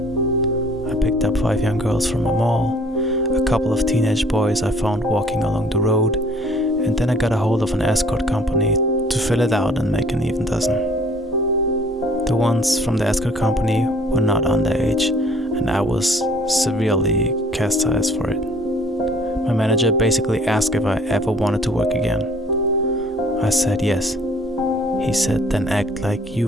I picked up 5 young girls from a mall, a couple of teenage boys I found walking along the road, and then I got a hold of an escort company to fill it out and make an even dozen. The ones from the escort company were not underage, and I was severely chastised for it. My manager basically asked if I ever wanted to work again. I said yes. He said, then act like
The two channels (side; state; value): both; normal; correlation 0.55